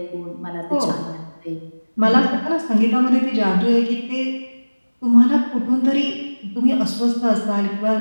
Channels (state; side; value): inverted; both; correlation -1.00